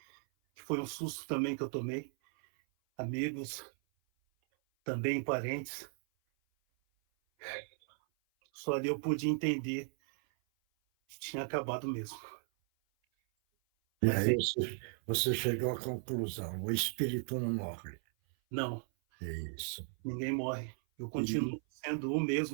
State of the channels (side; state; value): left; silent; 54 dB below the other